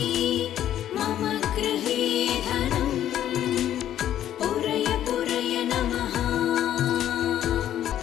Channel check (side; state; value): right; quieter; 11.4 dB